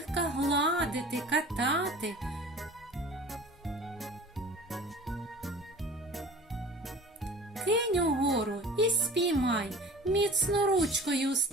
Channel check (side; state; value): both; normal; correlation 0.42